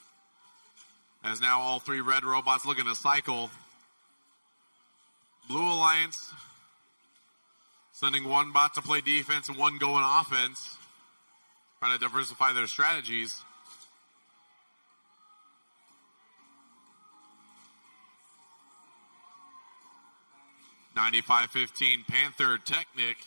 As now all 3 red robots looking to cycle. Blue Alliance sending 1 bot to play defense and 1 going offense. Trying to diversify their strategies. (95-15) Panther Technic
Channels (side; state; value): both; inverted; correlation -1.00